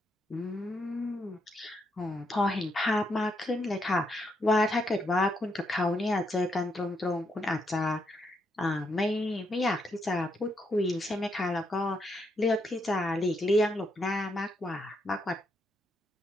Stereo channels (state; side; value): normal; both; correlation 0.78